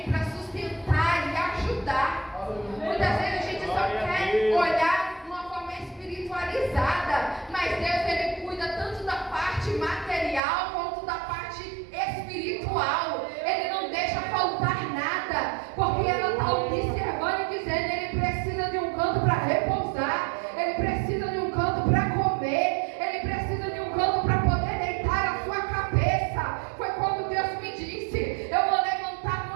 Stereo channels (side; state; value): left; drops out; at 10.4 s